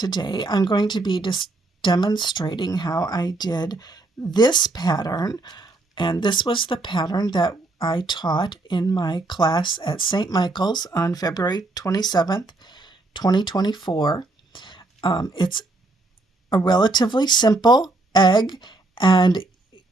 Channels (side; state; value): left; quieter; 3.0 dB